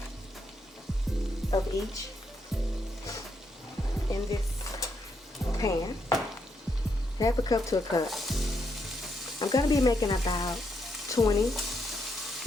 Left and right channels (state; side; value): normal; both; correlation 0.78